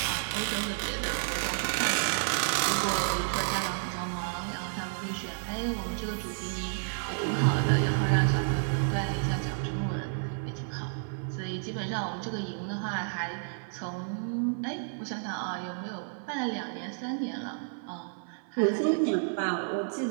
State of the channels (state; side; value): silent; left; 57 dB below the other